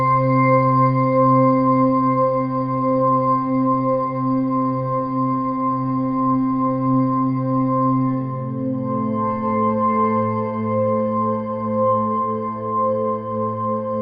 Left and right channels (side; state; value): both; identical; correlation 1.00